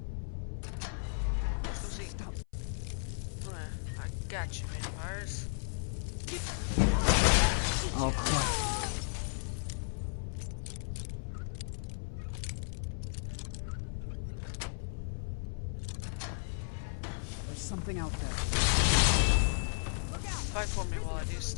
Let's go see. Stop. I got you, vampires. Oh, crap. There's something out there. Fight for me while I do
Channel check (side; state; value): right; silent; 55 dB below the other